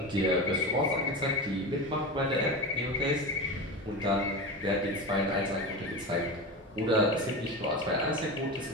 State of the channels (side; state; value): both; normal; correlation 0.24